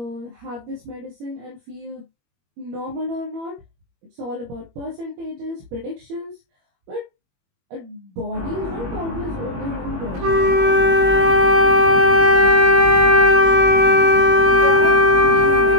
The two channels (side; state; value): left; late; 21 ms